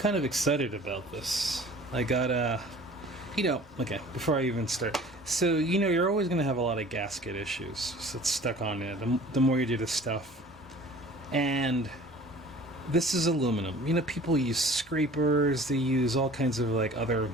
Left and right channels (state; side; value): normal; both; correlation 0.46